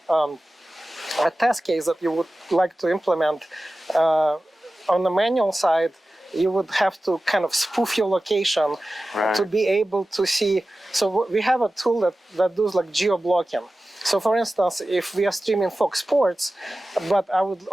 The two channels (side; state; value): both; normal; correlation 0.95